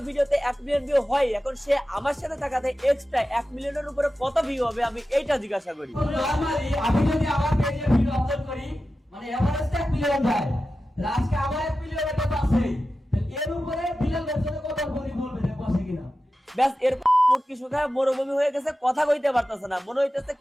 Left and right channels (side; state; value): both; normal; correlation 0.93